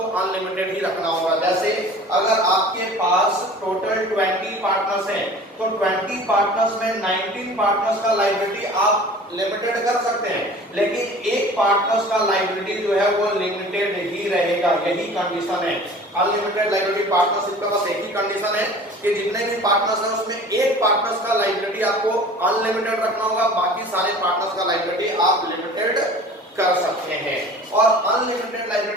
अनलिमिटेड ही रखना होगा। जैसे अगर आपके पास टोटल 20 पार्टनर्स हैं तो 20 पार्टनर्स में 19 पार्टनर्स का लायबिलिटी आप लिमिटेड कर सकते हैं, लेकिन एक पार्टनर्स का लायबिलिटी जो है वो लिमिटेड ही रहेगा। यही कंडीशन है अनलिमिटेड लायबिलिटी पार्टनरशिप का। बस एक ही कंडीशन है कि जितने भी पार्टनर्स हैं उसमें एक पार्टनर्स का लायबिलिटी आपको अनलिमिटेड रखना होगा, बाकी सारे पार्टनर्स का लायबिलिटी आप लिमिटेड कर सकते हैं। और अनलिमिटेड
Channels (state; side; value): normal; both; correlation 0.43